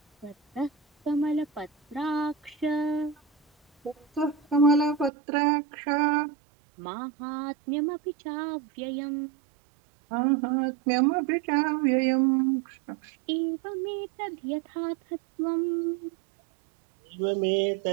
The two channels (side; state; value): left; drops out; at 5.1 s